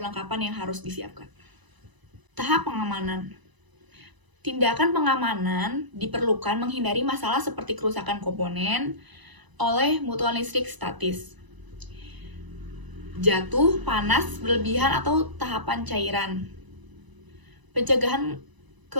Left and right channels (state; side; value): late; left; 1.0 ms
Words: yang harus disiapkan. Tahap pengamanan. Tindakan pengamanan diperlukan menghindari masalah seperti kerusakan komponen oleh mutual listrik statis, jatuh, panas, berlebihan, atau tahapan cairan. Pencegahan